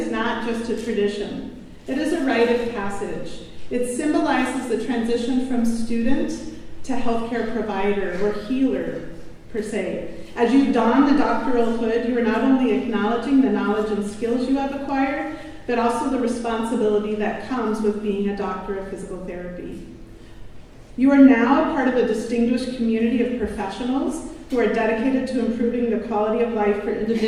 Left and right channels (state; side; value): identical; both; correlation 1.00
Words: not just a tradition. It is a rite of passage. It symbolizes the transition from student to healthcare provider or healer, per se. As you don the doctoral hood, you are not only acknowledging the knowledge and skills you have acquired, but also the responsibility that comes with being a doctor of physical therapy. You are now a part of a distinguished community of professionals who are dedicated to improving the quality of life for